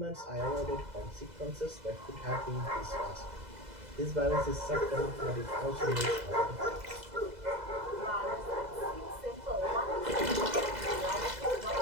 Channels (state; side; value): late; left; 2.0 ms